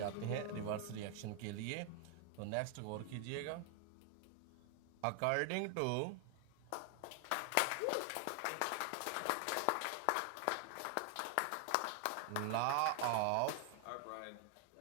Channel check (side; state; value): both; different; correlation 0.00